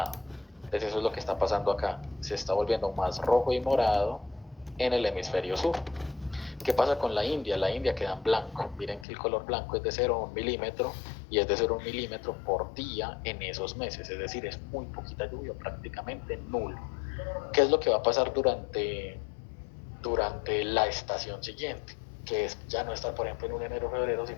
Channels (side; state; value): right; drops out; at 9.1 s